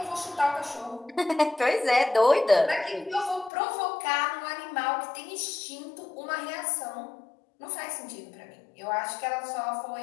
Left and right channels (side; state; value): right; drops out; at 3.5 s